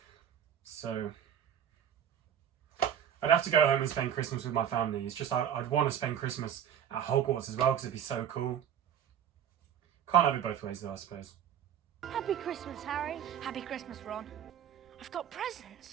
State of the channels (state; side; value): quieter; left; 9.2 dB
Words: So I'd have to go home and spend Christmas with my family. It's just I'd want to spend Christmas at Hogwarts as well because it'd be so cool. Can't have it both ways though, I suppose. Happy Christmas, Harry. Happy Christmas, Ron. I've got